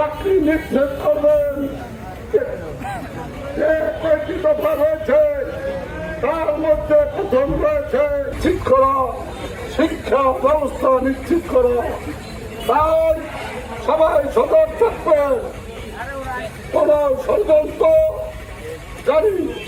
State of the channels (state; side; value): identical; both; correlation 1.00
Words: নিশ্চিত করবেন। যে কয়েকটি দফা রয়েছে তার মধ্যে প্রথম রয়েছে শিক্ষা ব্যবস্থা নিশ্চিত করা। তাই সবাই সতর্ক থাকবে, কোন ষড়যন্ত্র জানি